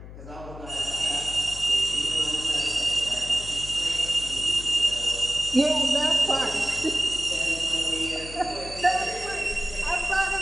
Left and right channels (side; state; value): left; noise; hum, 14 dB below the sound